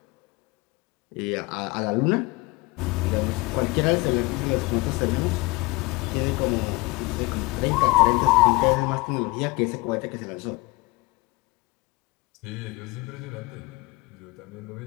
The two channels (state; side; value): quieter; right; 23.9 dB